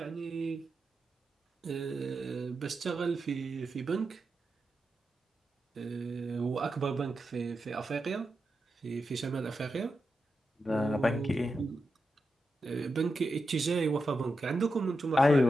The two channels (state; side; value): normal; both; correlation 0.88